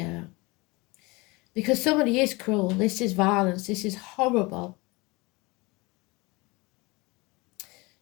Because somebody is cruel. This is violence. This is horrible.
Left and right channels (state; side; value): quieter; right; 24.6 dB